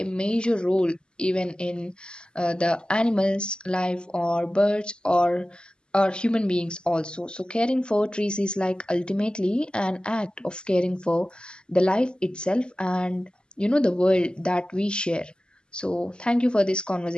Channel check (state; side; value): late; right; 0.050 ms